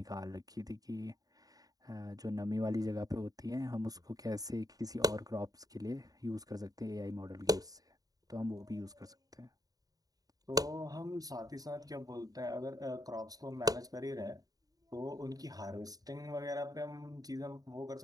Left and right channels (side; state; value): left; late; 0.18 ms